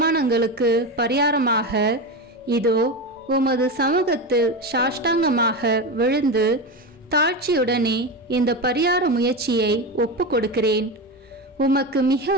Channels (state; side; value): normal; both; correlation 0.19